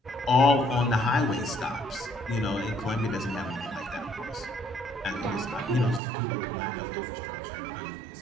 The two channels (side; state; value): left; drops out; at 6.0 s